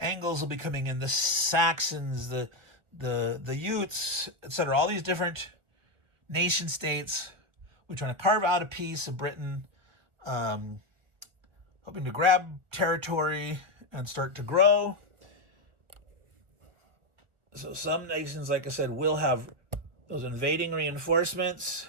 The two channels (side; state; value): left; late; 1.5 ms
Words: will be coming in, the Saxons, the Utes, etc. All these different nation states. We're trying to carve out a piece of Britain, hoping to grab territory and start to grow. So some nations, like I said, will have those invading reinforcements